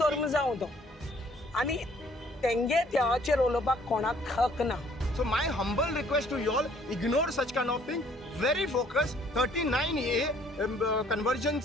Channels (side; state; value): both; normal; correlation 0.60